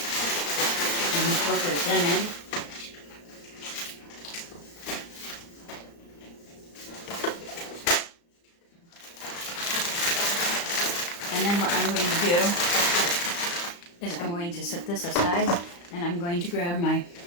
And incorporate them in. And then what I'm going to do is I'm going to set this aside, and I'm going to grab my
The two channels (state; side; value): late; right; 35 ms